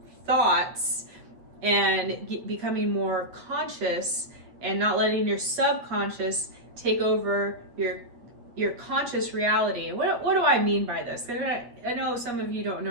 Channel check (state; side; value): late; left; 8.4 ms